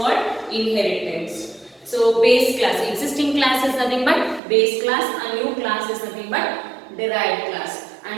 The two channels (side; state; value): left; drops out; at 4.4 s